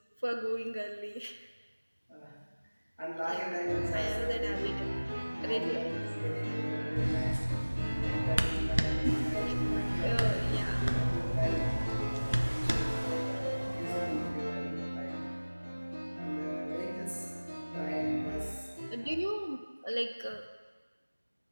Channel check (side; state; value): both; inverted; correlation -1.00